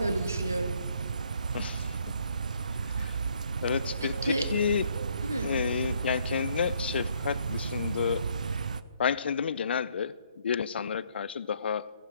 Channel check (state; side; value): inverted; both; correlation -0.68